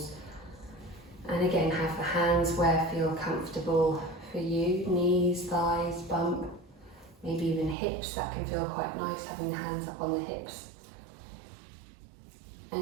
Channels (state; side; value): drops out; left; at 7.8 s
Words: and again have the hands where feel comfortable for you, knees, thighs, bump, maybe even hips. That can feel quite nice, having the hands up on the hips.